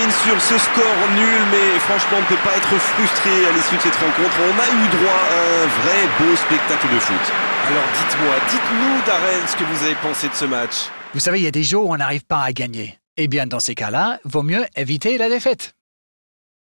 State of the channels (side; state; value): both; inverted; correlation -1.00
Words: sur ce score nul, mais franchement on ne peut pas être frustré à l'issue de cette rencontre. On a eu droit à un vrai beau spectacle de foot. Alors dites-nous Darren ce que vous avez pensé de ce match. Vous savez, il y a des jours où on n'arrive pas à gagner. Eh bien, dans ces cas-là, vaut mieux éviter la défaite.